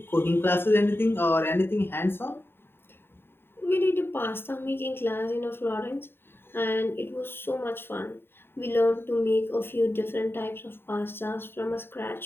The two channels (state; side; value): late; right; 0.11 ms